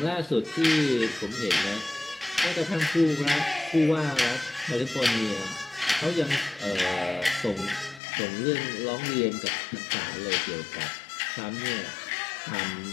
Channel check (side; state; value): right; drops out; at 8.0 s